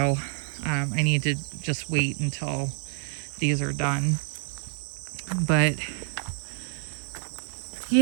I need to just wait until these are done. But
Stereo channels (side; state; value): left; silent; digital silence